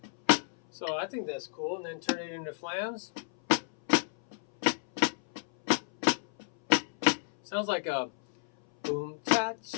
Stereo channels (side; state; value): right; silent; 57 dB below the other